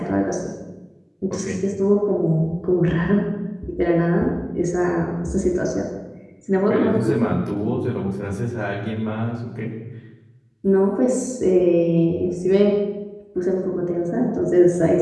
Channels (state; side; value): identical; both; correlation 1.00